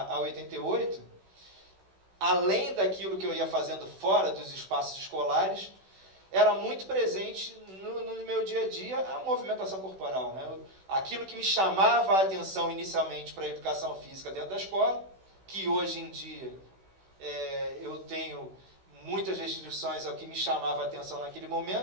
88, além daquilo que eu ia fazendo fora dos espaços escolares, era muito presente no meu dia a dia a movimentação corporal, né? Aquilo que me chamava a atenção inicialmente para a educação física dentro da escola, que hoje em dia eu tenho muitas restrições ao que me chamava a atenção naquele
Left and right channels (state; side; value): late; left; 16 ms